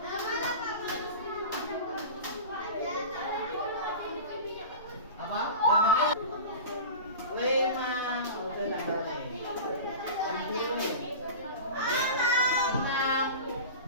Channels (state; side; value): inverted; both; correlation -0.32